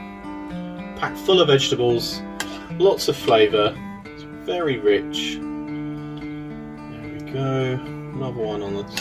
packed full of vegetables, lots of flavour, it's very rich. There we go, another one on the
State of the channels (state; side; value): identical; both; correlation 1.00